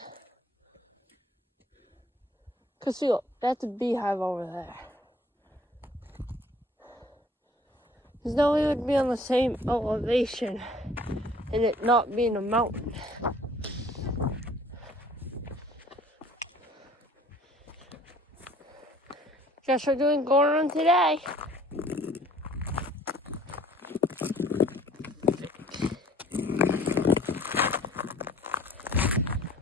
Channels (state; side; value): normal; both; correlation 0.53